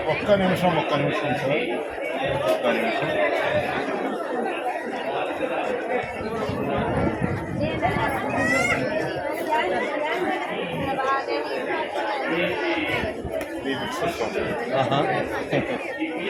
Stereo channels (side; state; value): both; identical; correlation 1.00